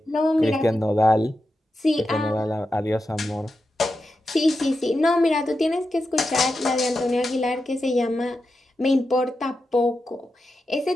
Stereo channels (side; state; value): both; normal; correlation 0.89